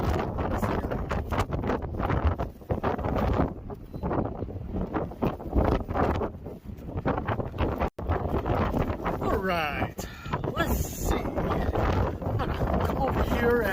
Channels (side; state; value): both; identical; correlation 1.00